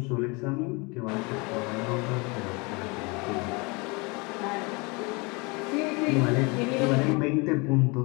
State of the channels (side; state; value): right; quieter; 28.4 dB